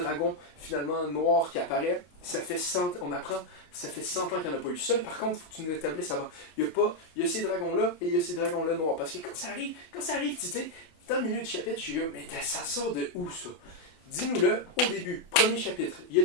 finalement, noir qui apparaît. Ça fait 100, on apprend, ça fait 100 ans qu'il n'y en a pas eu. Seul, par contre, il faut que tu nous établisses avant. Il y a ces dragons-là, et il y a ces dragons-là noirs. Parce que quand ça arrive, tu sais, dans le milieu du chapitre, je suis là, mais ça sort de où, ça? Dis-nous-le au début, premier chapitre. Il y a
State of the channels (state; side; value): late; right; 28 ms